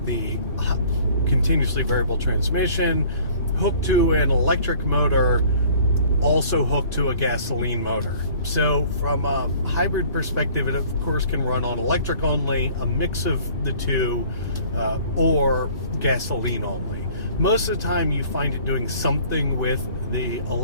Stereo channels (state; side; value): inverted; both; correlation -0.53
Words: the continuously variable transmission, hooked to an electric motor, also hooked to a gasoline motor. So from a hybrid perspective, it of course can run on electric only, a mix of the two, or gasoline only. Most of the time you find it doing something with the